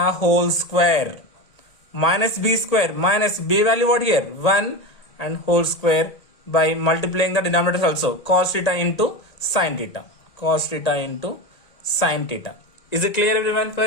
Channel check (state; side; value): late; right; 1.8 ms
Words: whole square minus B square, minus B value what here? 1, and whole square by multiplying the denominators also. Cos theta into sin theta. Cos theta into sin theta. Is it clear everyone